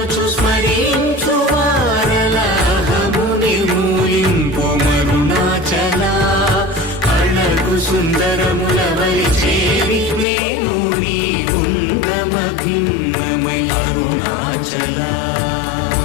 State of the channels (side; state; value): right; drops out; at 10.2 s